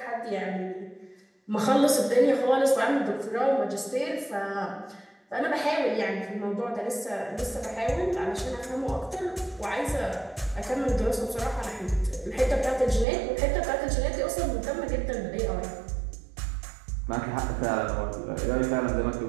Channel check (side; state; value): left; drops out; at 13.1 s